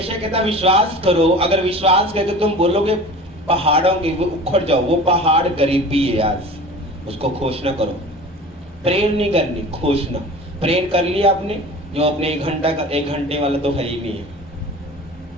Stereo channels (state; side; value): normal; both; correlation 0.39